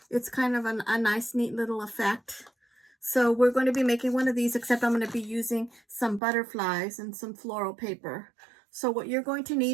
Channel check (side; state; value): left; drops out; at 6.2 s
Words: It's kind of a nice, neat little effect. So we're going to be making one of these, except I'm going to be using some butterflies and some floral paper. So what you're going to